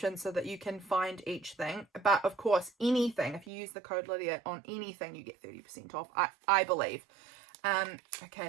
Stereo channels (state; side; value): drops out; left; at 3.5 s